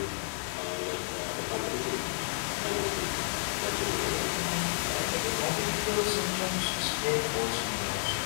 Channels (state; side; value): silent; right; 57 dB below the other